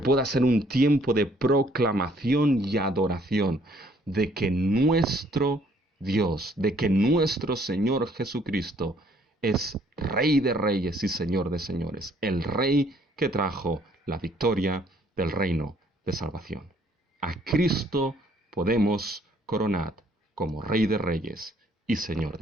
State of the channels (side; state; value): both; normal; correlation 0.63